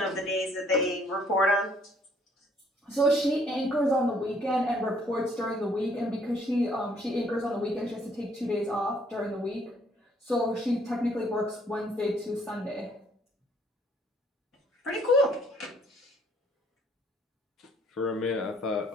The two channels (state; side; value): normal; both; correlation 0.64